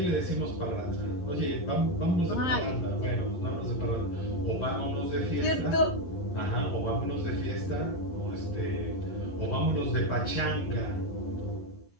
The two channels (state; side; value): late; right; 11 ms